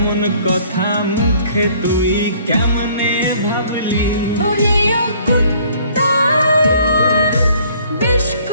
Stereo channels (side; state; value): both; inverted; correlation -0.58